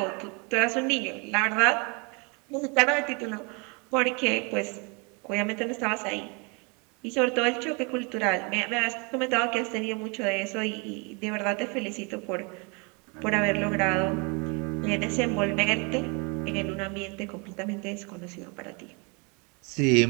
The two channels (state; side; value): quieter; left; 31.6 dB